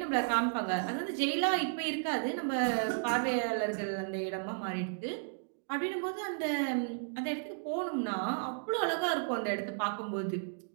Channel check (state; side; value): silent; left; digital silence